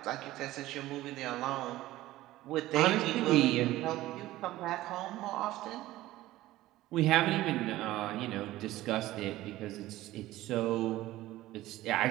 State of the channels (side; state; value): left; quieter; 16.3 dB